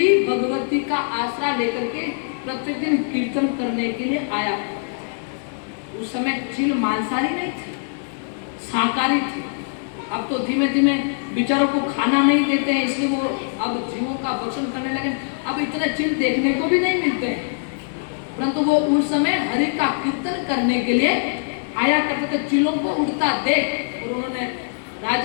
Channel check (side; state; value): right; silent; digital silence